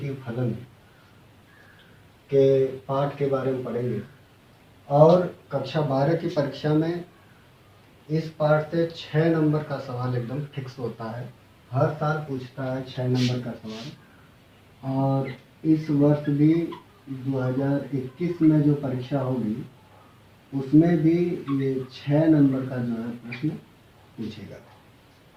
फलन के पाठ के बारे में पढ़ेंगे। और कक्षा 12 की परीक्षा में इस पाठ से 6 नंबर का सवाल एकदम फिक्स होता है। हर साल पूछता है 6 नंबर का सवाल। और इस वर्ष भी 2021 में जो परीक्षा होगी उसमें भी ये 6 नंबर का जो है प्रश्न पूछेगा।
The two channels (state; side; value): identical; both; correlation 1.00